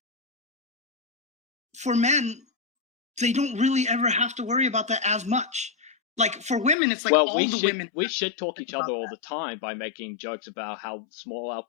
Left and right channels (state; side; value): drops out; right; at 6.8 s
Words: for men, they don't really ever have to worry about that as much. Like for women, it's like Well, all the women we should talk think each about other all that. the time by making jokes about how small our